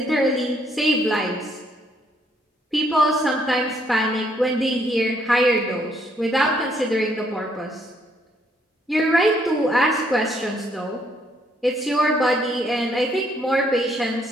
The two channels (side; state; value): both; normal; correlation 0.70